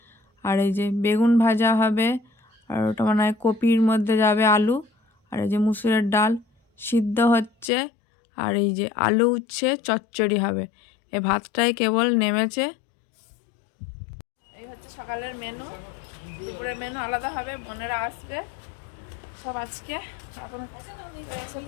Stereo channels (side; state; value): right; drops out; at 7.7 s